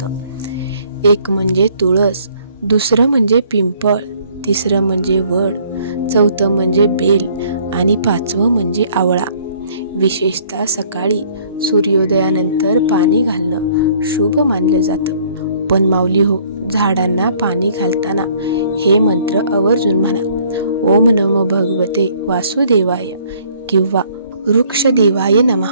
एक म्हणजे तुळस, दुसरं म्हणजे पिंपळ, तिसरं म्हणजे वड, चौथं म्हणजे बेल आणि पाचवं म्हणजे आवळा. विशेषतः सकाळी सूर्योदयानंतर पाणी घालणं शुभ मानलं जातं. पण माऊली हो, झाडांना पाणी घालताना हे मंत्र आवर्जून म्हणा. ओम नमो भगवते वासुदेवाय किंवा वृक्षदेवाय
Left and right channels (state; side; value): inverted; both; correlation -0.60